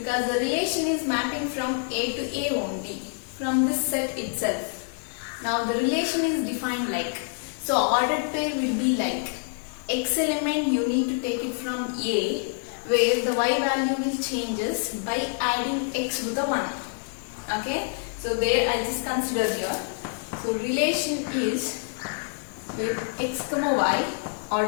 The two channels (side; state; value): right; silent; 60 dB below the other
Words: the relation is mapping from A to A only from this set itself. Now the relation is defined like, so ordered pair will be like x element you need to take it from A, where the y value will changes by adding x with the 1. Okay, so there I just consider here. So relation is with x comma y